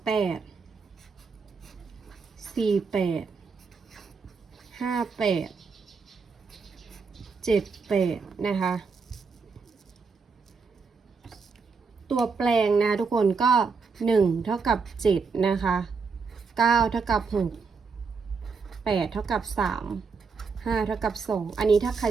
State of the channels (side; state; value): left; quieter; 5.0 dB